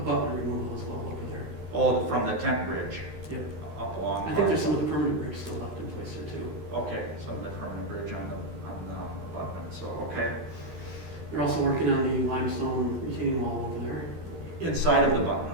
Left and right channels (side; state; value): left; late; 13 ms